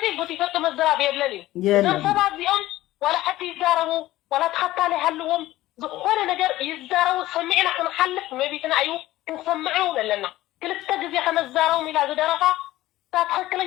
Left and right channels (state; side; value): quieter; right; 16.1 dB